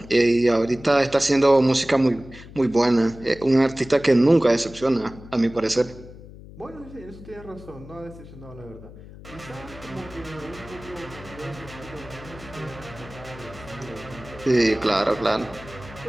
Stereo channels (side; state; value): left; noise; hum, 17 dB below the sound